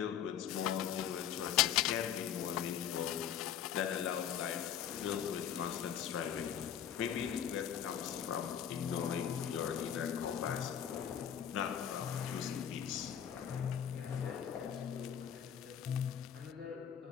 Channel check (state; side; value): quieter; right; 9.2 dB